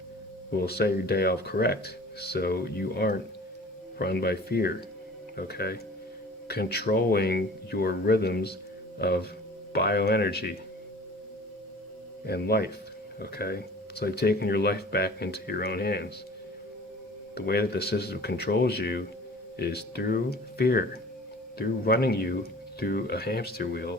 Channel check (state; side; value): normal; both; correlation 0.45